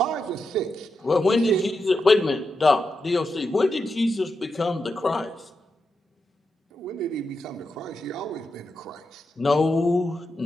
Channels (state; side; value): normal; both; correlation 0.87